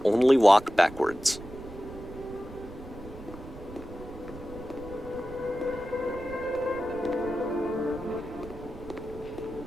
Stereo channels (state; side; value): noise; right; rumble, 15 dB below the sound